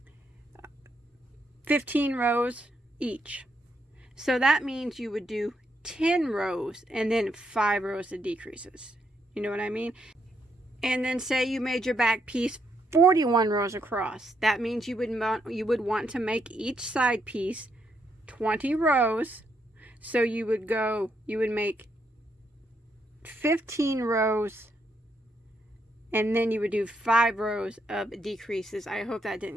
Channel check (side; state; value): both; normal; correlation 0.77